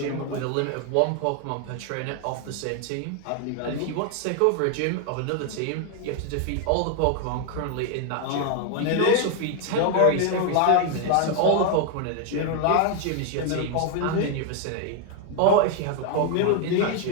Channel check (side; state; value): both; different; correlation 0.00